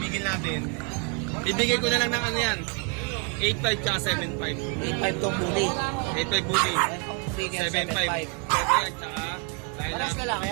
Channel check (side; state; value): left; quieter; 34.8 dB